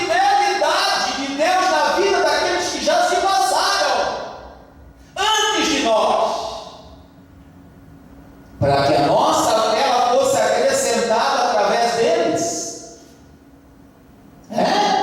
de Deus na vida daqueles que já se passaram antes de nós, para que a nossa fé fosse acrescentada através deles.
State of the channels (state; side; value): identical; both; correlation 1.00